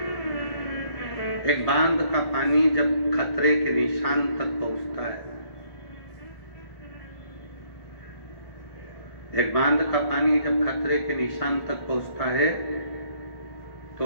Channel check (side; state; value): right; late; 1.4 ms